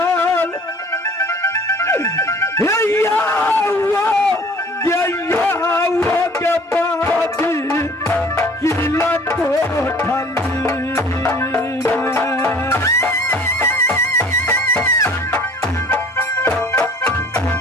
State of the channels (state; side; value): normal; both; correlation 0.50